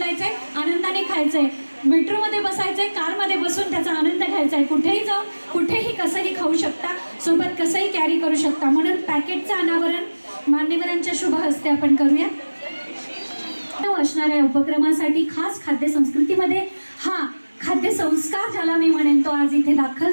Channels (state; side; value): inverted; both; correlation -1.00